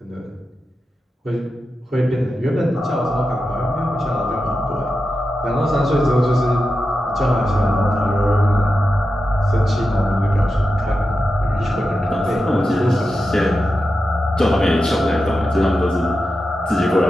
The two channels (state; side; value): normal; both; correlation 0.90